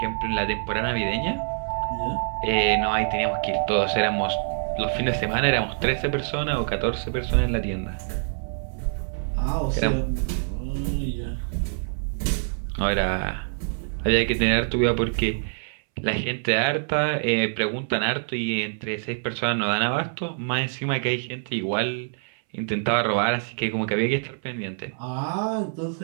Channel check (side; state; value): left; silent; 61 dB below the other